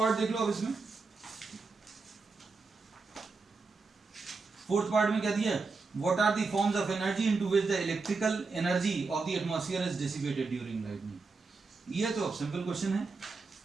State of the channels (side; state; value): left; quieter; 4.2 dB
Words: देख लो। अब इसमें फोर्थ पार्ट में क्या दिया है, what are the forms of energy into which the electrical energy of the atmosphere is dissipated during lightning. ये तो अब सिंपल क्वेश्चन है।